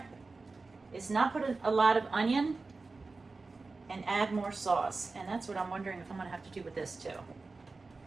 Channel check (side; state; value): left; quieter; 3.8 dB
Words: is not put a lot of onion and add more sauce. And that's what I'm wondering if I'm gonna have to do with this too.